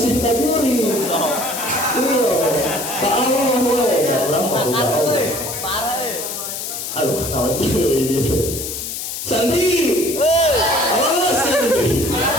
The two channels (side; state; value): left; noise; hiss, 6 dB below the sound